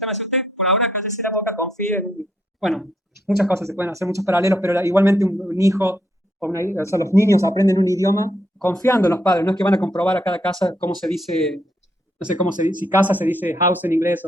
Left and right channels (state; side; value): normal; both; correlation 0.75